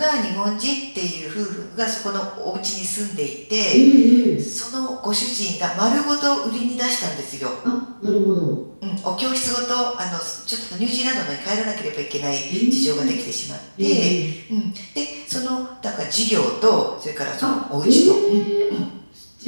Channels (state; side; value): inverted; both; correlation -1.00